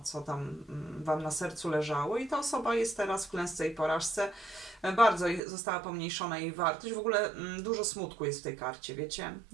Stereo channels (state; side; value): drops out; left; at 5.4 s